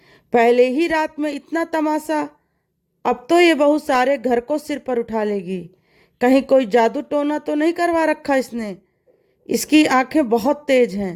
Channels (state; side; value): identical; both; correlation 1.00